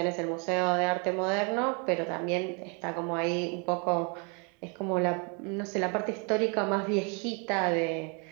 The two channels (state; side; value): quieter; left; 34.7 dB